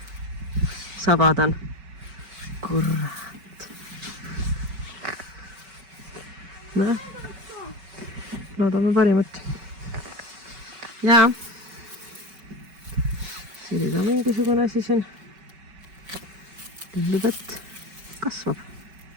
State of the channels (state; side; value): late; left; 5.3 ms